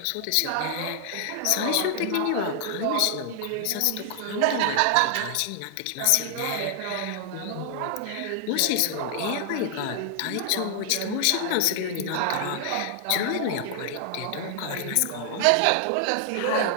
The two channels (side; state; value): both; different; correlation 0.00